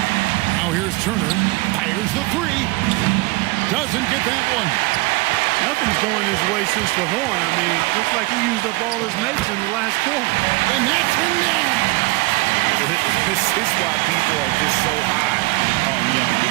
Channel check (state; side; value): quieter; left; 22.3 dB